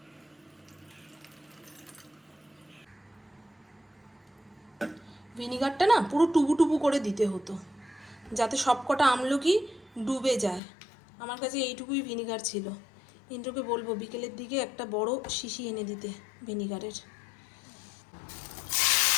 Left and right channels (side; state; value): right; drops out; at 10.6 s